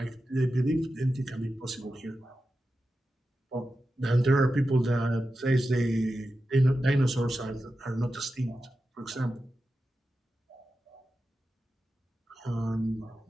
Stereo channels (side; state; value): both; normal; correlation 0.91